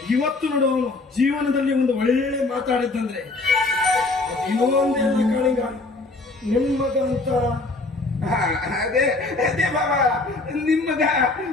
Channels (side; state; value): right; quieter; 3.3 dB